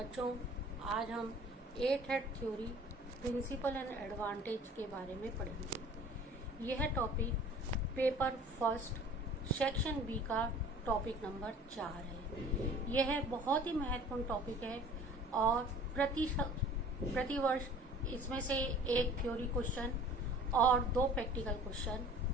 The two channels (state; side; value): normal; both; correlation 0.47